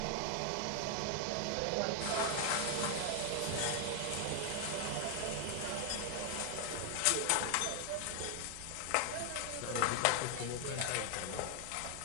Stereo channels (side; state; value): both; different; correlation 0.00